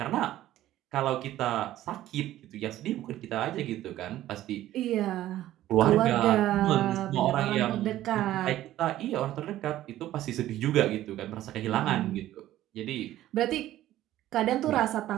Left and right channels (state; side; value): quieter; left; 13.9 dB